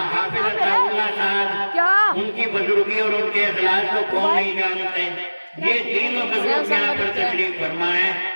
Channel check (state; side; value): inverted; both; correlation -1.00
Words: اللہ صاحب ان کی بزرگی اور ان کے اخلاص کو کون نہیں جانتے؟ یہ تینوں بزرگ یہاں پر تشریف فرما ہے,